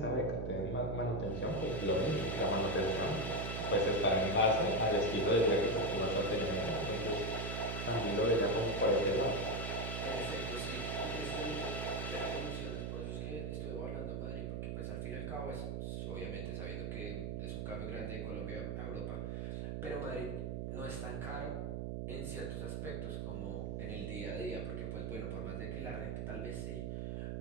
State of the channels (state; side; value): noise; right; hum, 3 dB below the sound